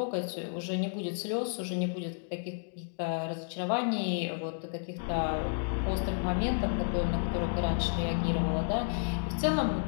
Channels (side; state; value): right; silent; digital silence